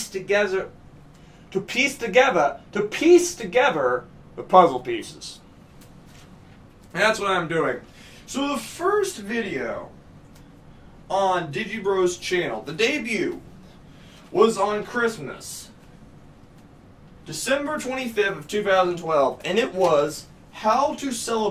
together the puzzle pieces. And that's what I'm doing. So the first video on DigiBro's channel, the debut, was on Christmas, December 25th of 2012, and it was How to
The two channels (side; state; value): both; identical; correlation 1.00